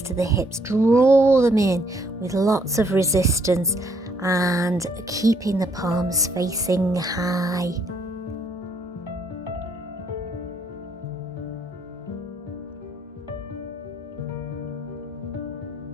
to the hips, draw them in with lots of resistance and keeping the palms facing high.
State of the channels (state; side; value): normal; both; correlation 0.69